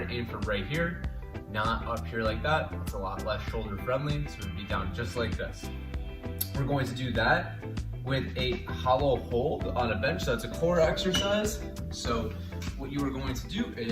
to aim for right here, not up here like that. It's a lot less shoulder friendly, so it'd be down just like this. We're going to do that with a hollow hold on a bench. So it's a core exercise. So what you are going to do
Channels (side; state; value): both; identical; correlation 1.00